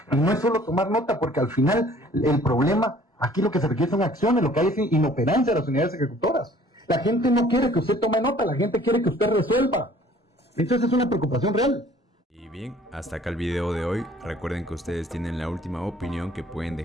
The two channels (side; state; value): both; normal; correlation 0.54